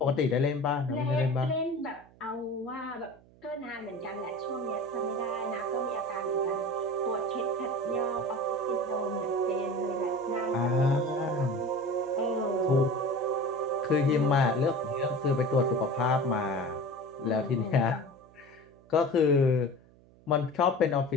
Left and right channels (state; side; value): noise; right; hum, 26 dB below the sound